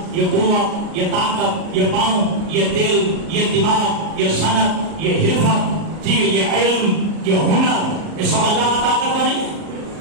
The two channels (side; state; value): left; late; 38 ms